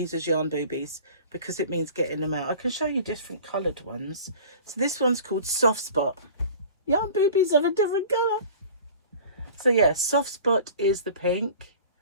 as yarn boobies because it means getting them out. I can show you different coloured ones. So this one's called Soft Spot. Yarn boobies of a different colour. So yeah, Soft Spot is the pink.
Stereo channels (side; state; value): both; inverted; correlation -0.43